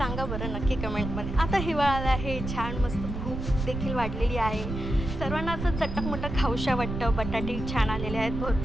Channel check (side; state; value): right; noise; rumble, 5 dB below the sound